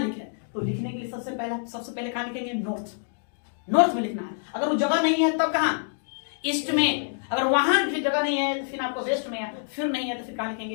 तो लिखने के लिए सबसे पहले कहाँ लिखेंगे? नॉर्थ में लिखना है। अगर वो जगह नहीं है तब कहाँ? ईस्ट में। अगर वहां भी जगह नहीं है तो फिर आपको वेस्ट में है, फिर नहीं है तो फिर कहाँ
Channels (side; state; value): right; silent; digital silence